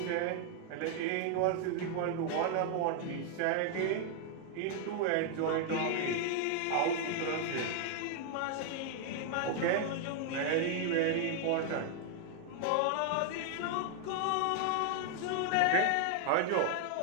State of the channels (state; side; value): different; both; correlation 0.00